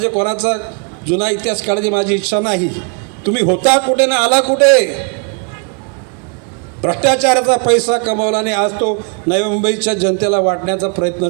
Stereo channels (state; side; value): quieter; left; 38.0 dB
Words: कोणाचा जुना इतिहास काढायची माझी इच्छा नाही. तुम्ही होता कुठे ना आला कुठे. भ्रष्टाचाराचा पैसा कमवला आणि आज तो नवी मुंबईच्या जनतेला वाटण्याचा प्रयत्न